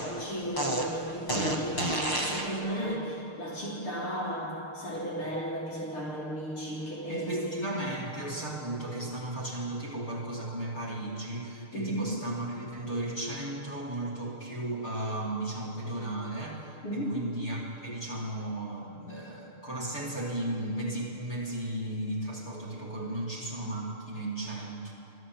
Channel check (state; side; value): late; right; 6.6 ms